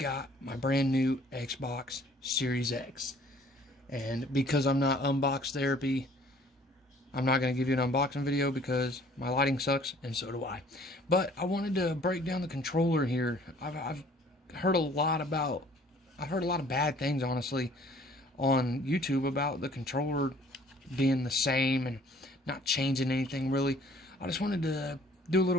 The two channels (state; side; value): normal; both; correlation 0.55